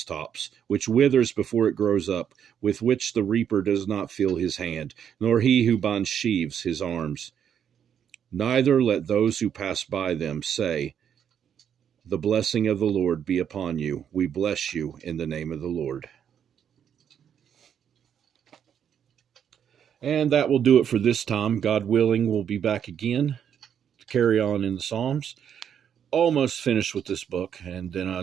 which withers before it grows up, with which the reaper does not feel his hand, nor he who binds sheaves his arms. Neither let those who pass by them say, the blessing of the Lord be upon you. We bless you in the name of the Lord. And that will do it for this time. God willing, we'll be back again to carry on in the Psalms. Almost finished with this book, and then I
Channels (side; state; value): left; quieter; 8.6 dB